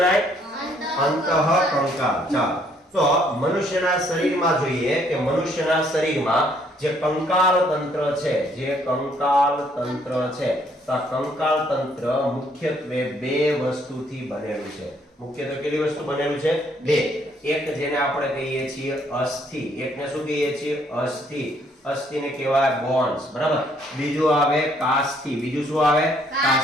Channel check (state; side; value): normal; both; correlation 0.66